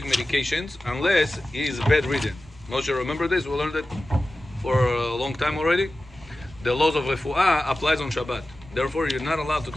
medications unless he is bedridden. Moshe, remember this? We learned it for a long time already. The laws of refuah applies on Shabbat. Therefore, you're not allowed to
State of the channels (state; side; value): normal; both; correlation 0.94